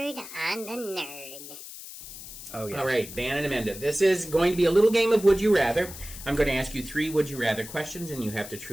on the Nerd? Oh, yeah. All right, Ben and Amanda, this is going to be a little game of Would You Rather. I'm going to ask you 3 Would You Rather questions, and you have to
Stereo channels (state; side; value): noise; left; hiss, 13 dB below the sound